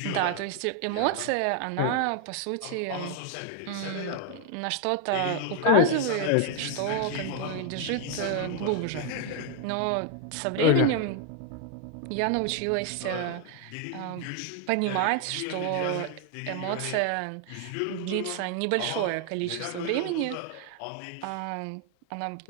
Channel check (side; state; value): both; different; correlation 0.00